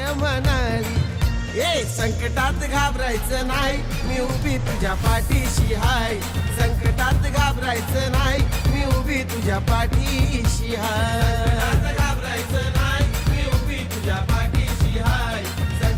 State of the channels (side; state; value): both; identical; correlation 1.00